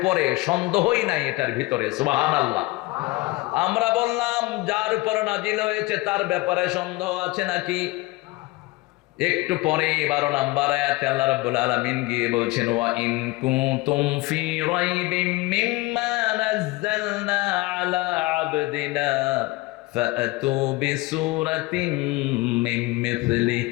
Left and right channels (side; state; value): right; quieter; 21.7 dB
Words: সন্দেহই নাই এটার ভিতরে। সুবহানাল্লাহ। আমরা বললাম যার উপর নাজিল হয়েছে তার ব্যাপারে সন্দেহ আছে নাকি? একটু পরে 12 নম্বর আয়াতে আল্লাহ রাব্বুল আলামিন গিয়ে বলছেন ওয়া ইন কুনতুম ফি রাইবিম মিম্মা নাযালনা আলা আবদিনা ফাআতু বিসূরাতিন মিন মিথলি